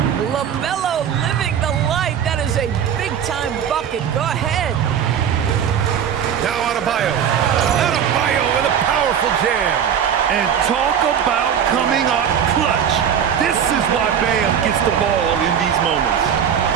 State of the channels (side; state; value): left; quieter; 8.4 dB